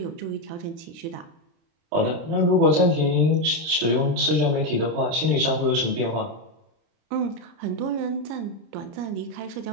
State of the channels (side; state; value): left; late; 30 ms